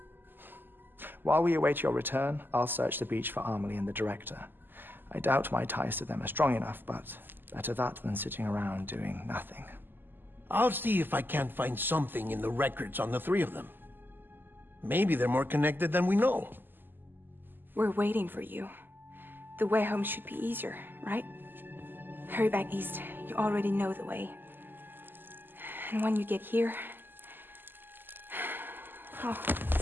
While we await your return, I'll search the beach for Amelie and the director. I doubt my ties to them are strong enough, but better that than sitting around doing nothing. I'll see if I can't find something in the records on the three of them. Maybe they're more connected than we know. We're waiting for you. The way home should be easier, right? Hurry back east. You already know the way. And when you get here... Oh.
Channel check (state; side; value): late; left; 0.093 ms